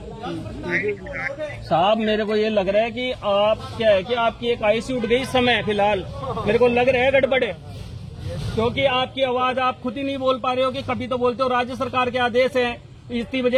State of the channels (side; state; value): both; identical; correlation 1.00